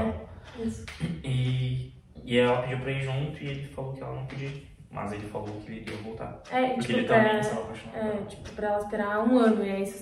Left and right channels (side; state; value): both; identical; correlation 1.00